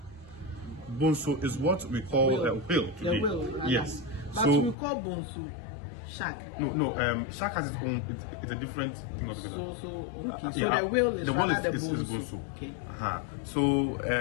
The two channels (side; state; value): right; drops out; at 4.8 s